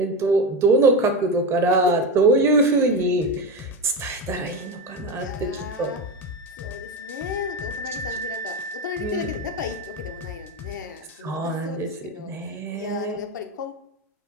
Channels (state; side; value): normal; both; correlation 0.17